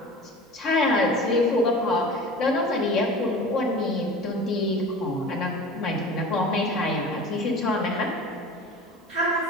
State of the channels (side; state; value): both; normal; correlation 0.37